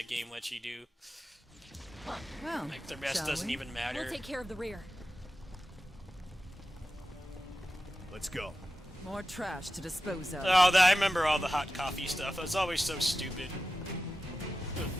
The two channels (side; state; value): both; normal; correlation 0.93